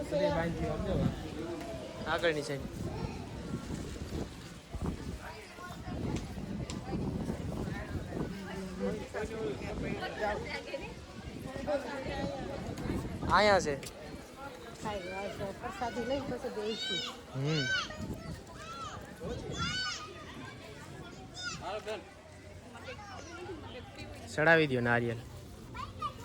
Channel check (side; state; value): both; identical; correlation 1.00